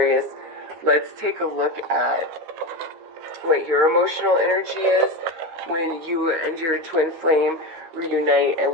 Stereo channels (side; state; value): left; late; 13 ms